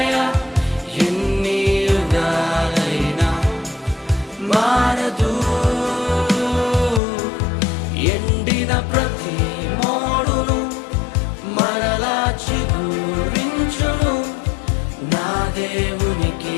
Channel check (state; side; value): drops out; right; at 7.0 s